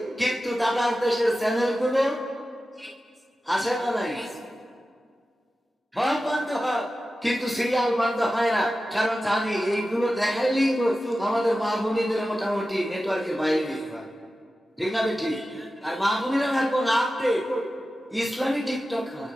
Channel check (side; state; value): both; normal; correlation 0.94